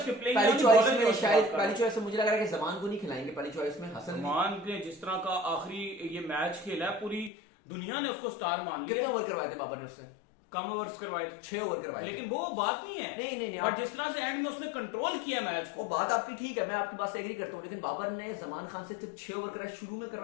के प्लेइंग पहली चॉइस में शायद पहली चॉइस में मुझे लग रहा है कि जमान को नहीं खिलाएंगे, पहली चॉइस में हसन जमान के जिस तरह का आखिरी ये मैच खेला है पूरी दुनिया ने उसको स्टार मान लिया। कितने ओवर करवाए थे बाबर ने उससे? कम ओवर्स करवाए, 6 ओवर करवाए, लेकिन वो बात नहीं है। नहीं बट जिस तरह से एंड में उसने कंट्रोल किया मैच को, वो बात आपकी ठीक है, मैं आपकी बात से एग्री करता हूँ, लेकिन बाबर ने जमान खान से सिर्फ 6 ओवर कराए, शुरू में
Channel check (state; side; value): drops out; right; at 7.3 s